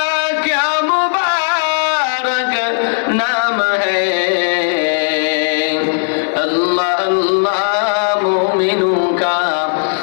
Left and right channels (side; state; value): right; silent; 69 dB below the other